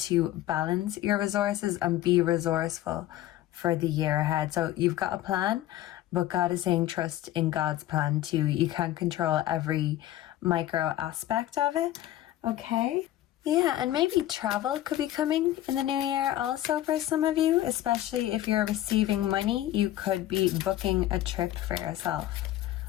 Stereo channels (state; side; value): quieter; right; 14.0 dB